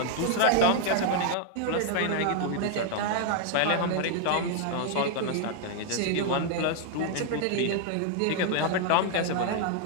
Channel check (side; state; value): both; different; correlation 0.00